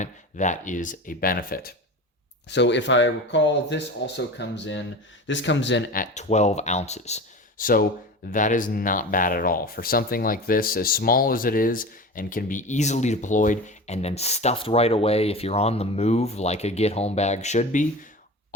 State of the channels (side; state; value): both; normal; correlation 0.32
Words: That is a benefit. So if I recall, this comes in at 12 ounces. So that is not bad at all. For something like this, as small as it is and can be easily deployed and then stuffed right away if you're on the move like a get home bag should be,